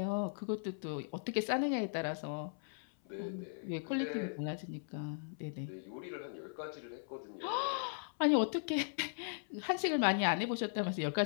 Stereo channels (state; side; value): silent; right; 52 dB below the other